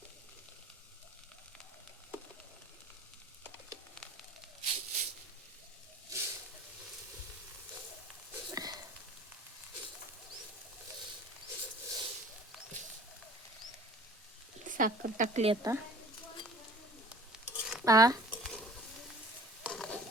साखर टाकली आता.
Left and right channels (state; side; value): normal; both; correlation 0.48